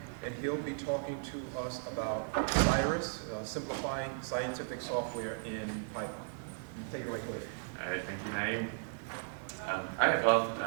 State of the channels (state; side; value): silent; left; digital silence